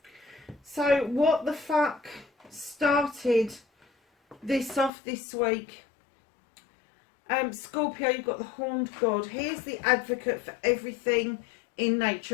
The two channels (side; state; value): right; drops out; at 4.9 s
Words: So, what the fuck started this off this week? Scorpio, you've got the horned god. Here's the advocate for everything in nature,